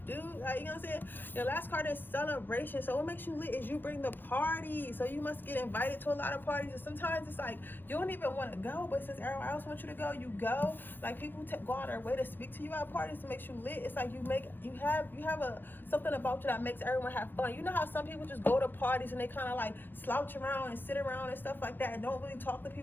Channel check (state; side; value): late; right; 0.094 ms